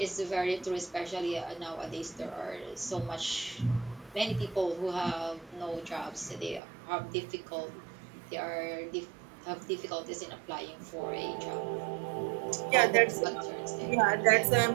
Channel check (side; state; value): left; drops out; at 6.6 s